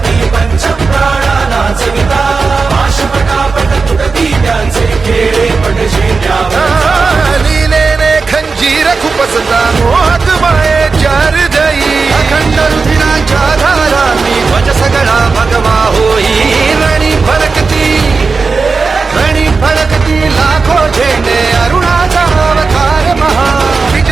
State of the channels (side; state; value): left; quieter; 4.5 dB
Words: पंचप्राणा नाचविता पाशपटापट तुटती त्यांचे खेळे पटशे